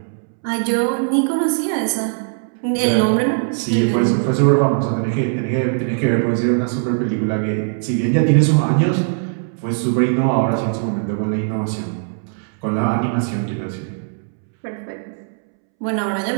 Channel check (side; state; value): left; silent; 66 dB below the other